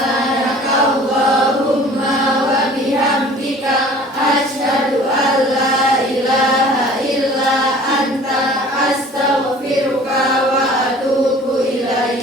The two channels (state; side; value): normal; both; correlation 0.48